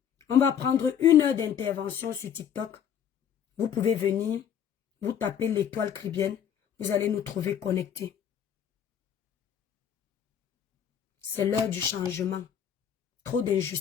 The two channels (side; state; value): right; quieter; 8.7 dB